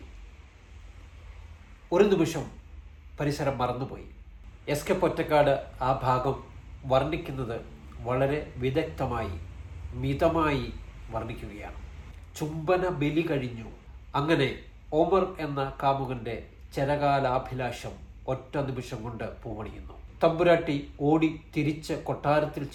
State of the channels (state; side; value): identical; both; correlation 1.00